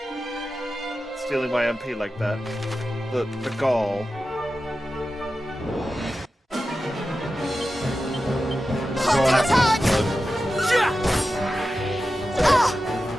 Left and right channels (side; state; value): both; normal; correlation 0.92